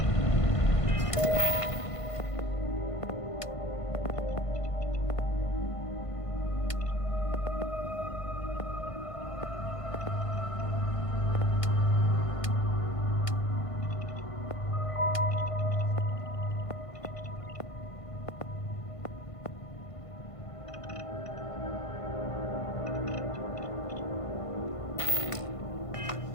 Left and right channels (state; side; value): late; right; 1.5 ms